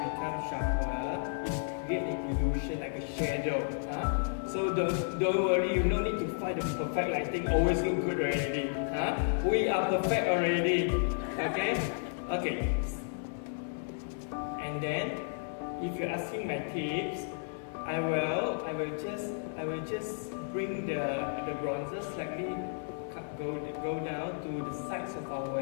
becomes sharper. It creates an illusion like a shadow. So don't worry, you don't need to find the perfect lighting. Always look good already. We are perfect already. Okay. And then, if you're asking my tips, I will just bring the bronzer slightly go down to the sides of our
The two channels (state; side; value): silent; right; digital silence